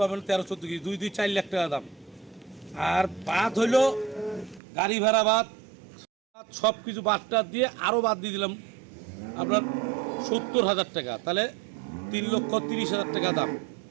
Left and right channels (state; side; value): drops out; left; at 4.6 s